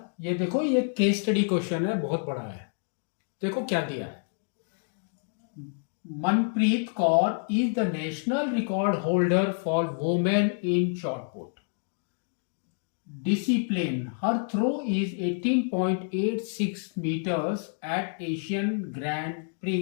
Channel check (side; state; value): right; silent; 59 dB below the other